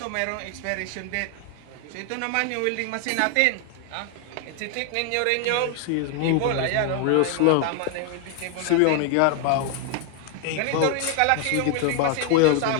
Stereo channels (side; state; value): both; different; correlation 0.00